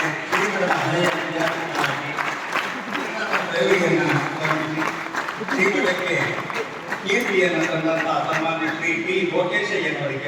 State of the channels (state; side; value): identical; both; correlation 1.00